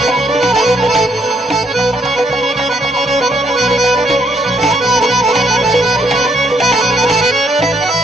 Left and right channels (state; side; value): normal; both; correlation 0.72